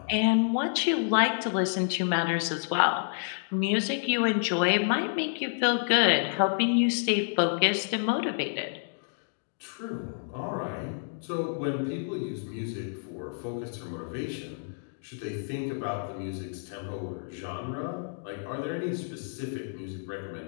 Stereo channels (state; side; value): silent; right; digital silence